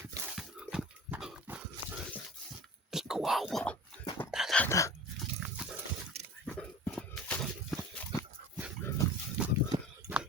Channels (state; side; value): normal; both; correlation 0.38